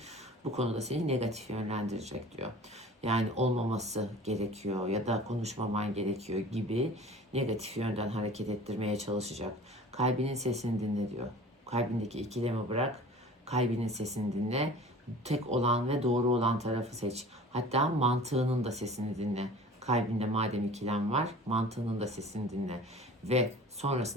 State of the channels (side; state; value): both; normal; correlation 0.43